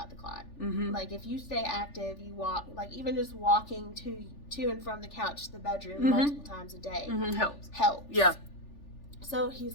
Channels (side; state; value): right; late; 3.4 ms